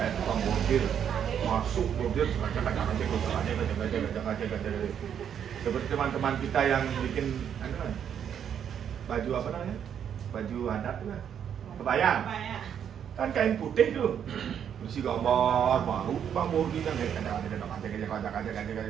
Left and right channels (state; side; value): quieter; left; 8.6 dB